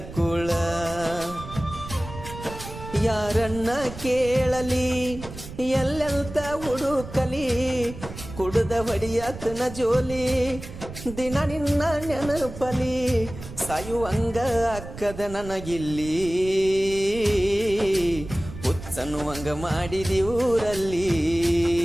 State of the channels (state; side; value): noise; right; rumble, 12 dB below the sound